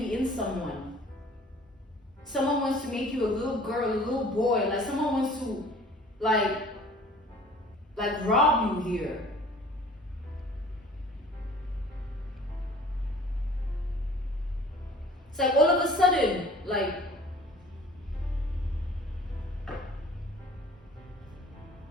in someone. Someone wants to make you a little girl, a little boy, like someone wants to like rob you here. It's like all of a sudden, like,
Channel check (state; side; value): normal; both; correlation 0.49